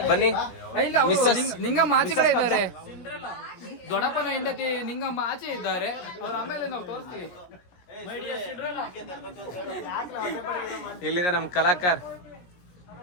ಬನ್ನಿ. ಇಲ್ಲ, ನಿಂಗಮ್ಮ ಆಚೆ ಕಡೆ ಇದ್ದಾರೆ. ದೊಡ್ಡಪ್ಪನ ಹೆಂಡತಿ ನಿಂಗಮ್ಮ ಆಚೆ ಇದ್ದಾರೆ. ಅವ್ರ ಆಮೇಲೆ ನಾವು ತೋರಿಸ್ತೀವಿ. ಇಲ್ಲಿದೆ ನಮ್ಮ ಕಲಾಕಾರ.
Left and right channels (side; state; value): right; late; 17 ms